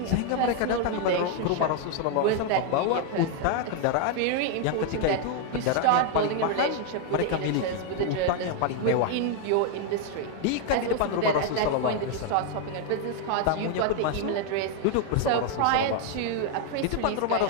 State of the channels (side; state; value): both; different; correlation 0.00